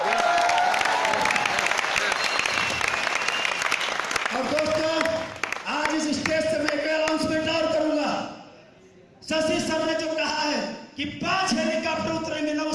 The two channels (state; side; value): identical; both; correlation 1.00